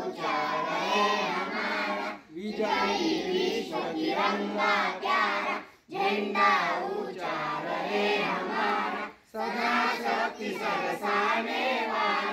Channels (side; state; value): both; identical; correlation 1.00